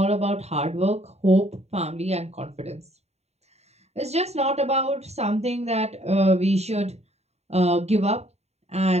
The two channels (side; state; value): left; late; 0.31 ms